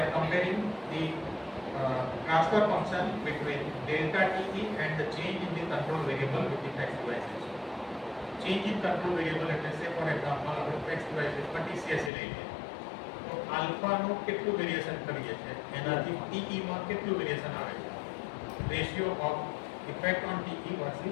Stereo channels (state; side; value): drops out; right; at 12.1 s